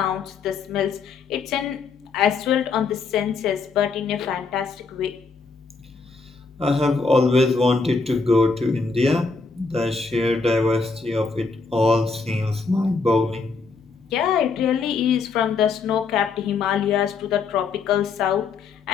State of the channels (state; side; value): quieter; right; 4.6 dB